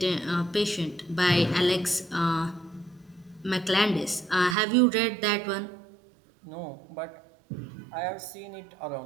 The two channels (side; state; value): left; drops out; at 4.5 s